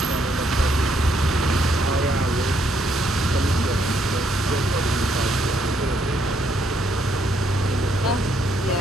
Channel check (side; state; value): both; normal; correlation 0.73